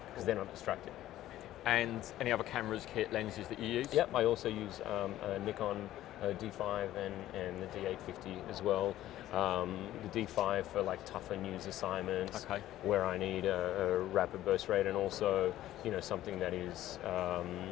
because they're not distracted. And any other cameras, kit, lenses that you use? Yep, I also use a Nikon D5 and the D850 as well. The D5 for like tougher news assignments, where I need a rapid burst rate, and also something that is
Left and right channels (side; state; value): right; quieter; 13.9 dB